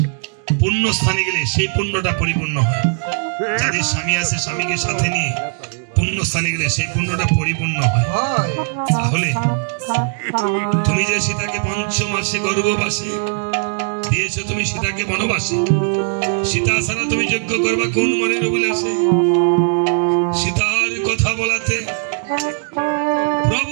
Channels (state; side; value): silent; left; 60 dB below the other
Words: পুণ্য স্থানে গেলে সেই পুণ্যটা পরিপূর্ণ হয়। যাদের স্বামী আছে স্বামীকে সাথে নিয়ে পুণ্য স্থানে গেলে সেই পুণ্যটা পরিপূর্ণ হয়। তাহলে তুমি যে সীতাকে পঞ্চমাসে গর্ভবাসে দিয়েছো, তুমি সীতাকে বনবাসে, সীতা ছাড়া তুমি যজ্ঞ করবা কোন মনের অভিলাষে? সীতার কথা বলাতে প্রভু